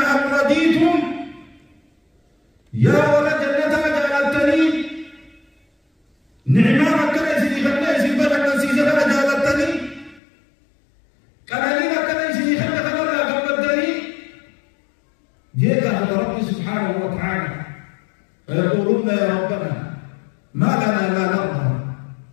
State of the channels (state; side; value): drops out; right; at 10.2 s